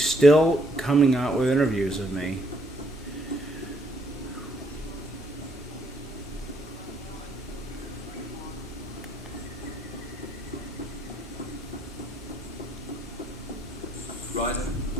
still coming out with interviews of me. Ryder?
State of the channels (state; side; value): normal; both; correlation 0.70